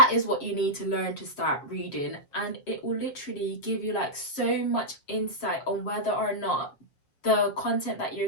is what you need to learn to start reading, and it will literally give you like so much insight on whether or not the content that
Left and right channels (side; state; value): right; late; 7.1 ms